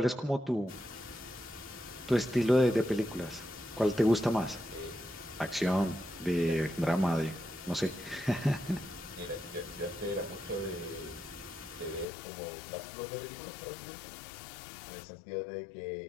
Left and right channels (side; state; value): right; drops out; at 12.1 s